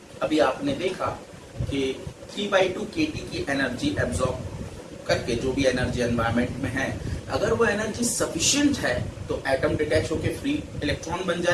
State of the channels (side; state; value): both; identical; correlation 1.00